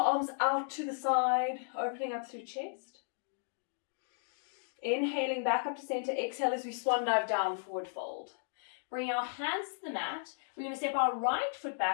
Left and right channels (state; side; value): silent; right; digital silence